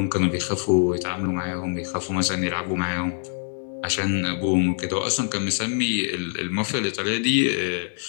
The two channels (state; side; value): silent; right; digital silence